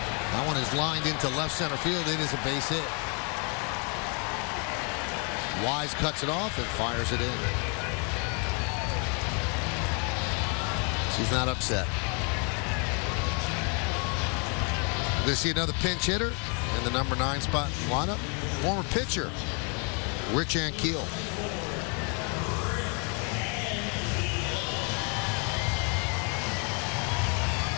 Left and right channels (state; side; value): quieter; right; 36.0 dB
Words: That one is lined into left center field. It is a base hit. Wise cuts it off and fires it in. She's not upset. We're going to see another pinch hitter in the number 9 spot in the lineup. Former pitcher, Rich Ankiel.